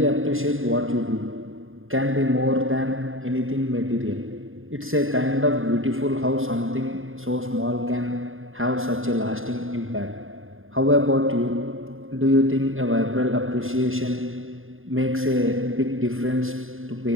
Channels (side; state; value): left; late; 0.59 ms